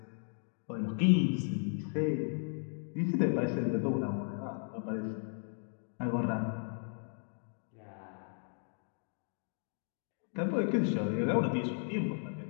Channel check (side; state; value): right; silent; 54 dB below the other